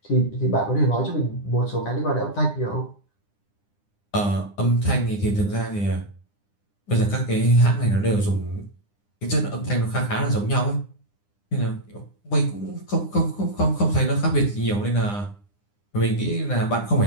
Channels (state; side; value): late; right; 9.9 ms